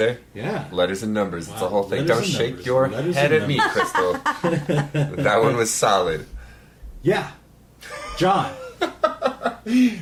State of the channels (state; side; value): identical; both; correlation 1.00